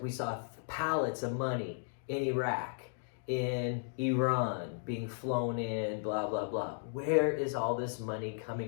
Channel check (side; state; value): right; silent; digital silence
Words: we saw pallets of money in Iraq, in Iran, being flown in, blah, blah, blah. Where is all this money